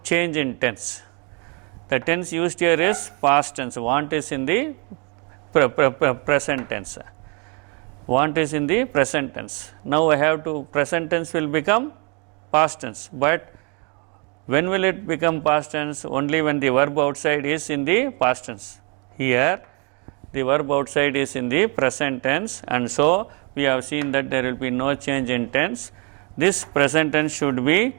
change in tense. The tense used here is past tense. Want is in the present tense. Want is in the present tense. Now I have to, present tense will become past tense. But when will it become past tense? Only when the verb outside is in the past tense. Here the verb outside is in the present tense, and so we have seen that there will be no change in tense. This present tense should be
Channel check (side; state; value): left; quieter; 34.0 dB